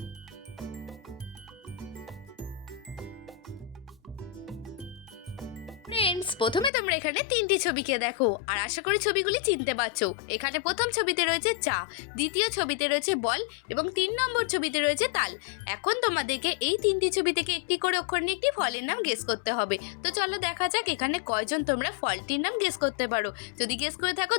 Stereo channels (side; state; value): right; drops out; at 6.7 s